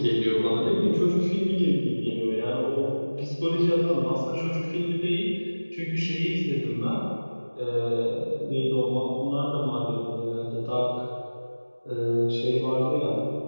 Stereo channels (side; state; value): both; inverted; correlation -1.00